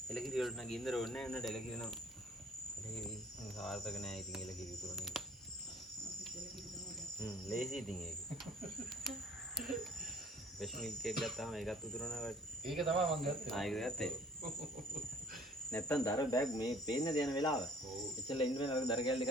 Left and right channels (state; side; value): normal; both; correlation 0.54